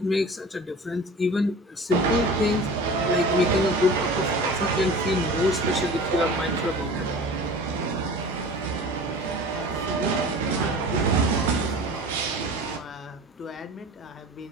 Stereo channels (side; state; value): both; normal; correlation 0.40